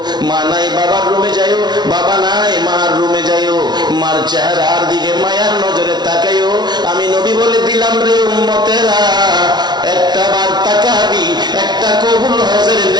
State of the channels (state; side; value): late; left; 0.20 ms